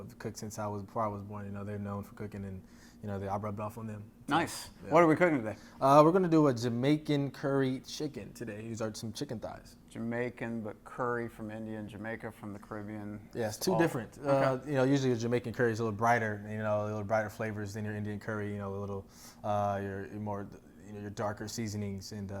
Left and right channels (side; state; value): both; identical; correlation 1.00